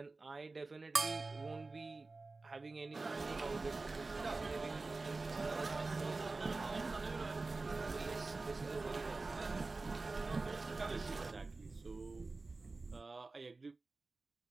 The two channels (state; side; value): quieter; left; 3.6 dB